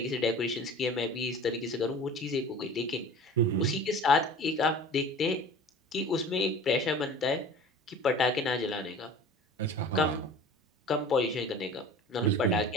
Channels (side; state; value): both; normal; correlation 0.40